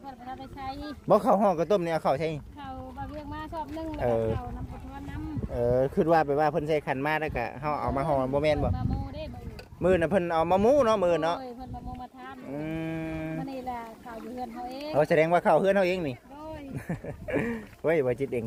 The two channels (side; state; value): both; identical; correlation 1.00